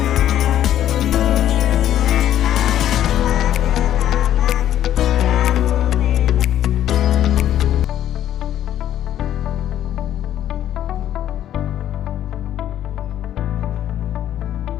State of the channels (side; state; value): right; quieter; 11.5 dB